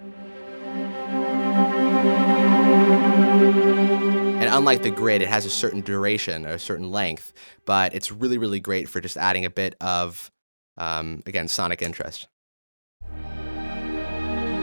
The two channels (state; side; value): inverted; both; correlation -1.00